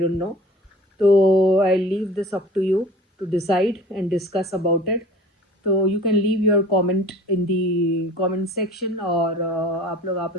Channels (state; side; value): normal; both; correlation 0.44